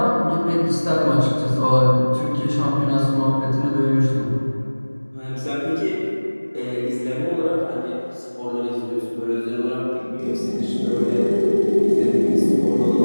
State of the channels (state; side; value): inverted; both; correlation -1.00